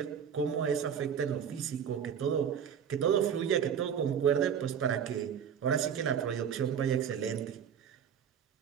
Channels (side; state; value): left; quieter; 8.0 dB